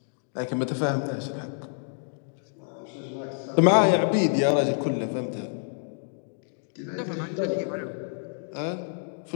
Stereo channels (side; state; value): right; silent; digital silence